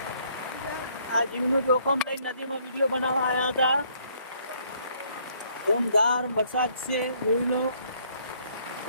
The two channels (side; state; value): both; inverted; correlation -0.65